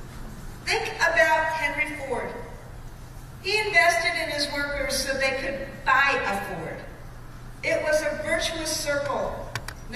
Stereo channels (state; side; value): identical; both; correlation 1.00